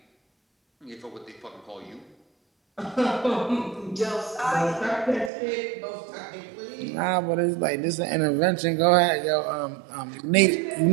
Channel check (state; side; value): drops out; left; at 5.3 s